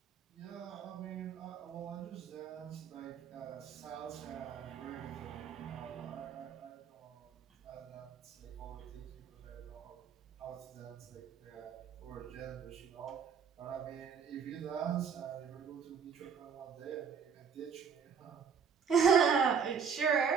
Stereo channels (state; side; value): quieter; left; 6.7 dB